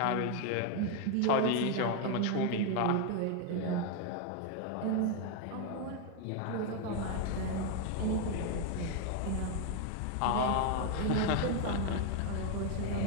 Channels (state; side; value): different; both; correlation 0.01